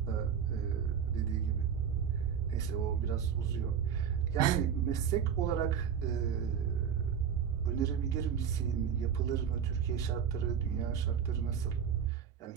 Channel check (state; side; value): quieter; left; 7.9 dB